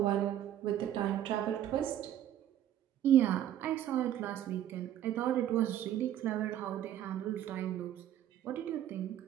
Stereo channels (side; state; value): left; quieter; 11.4 dB